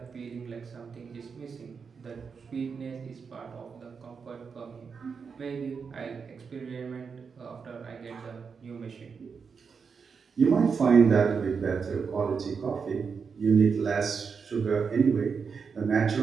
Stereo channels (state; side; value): quieter; left; 5.7 dB